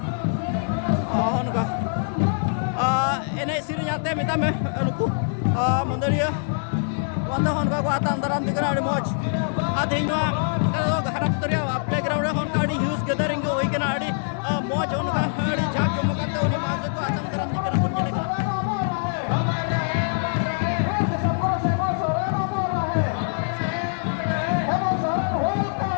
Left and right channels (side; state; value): right; silent; digital silence